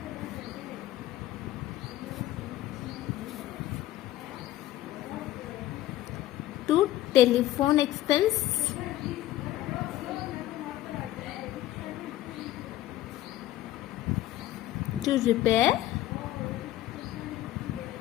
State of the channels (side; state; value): right; quieter; 14.6 dB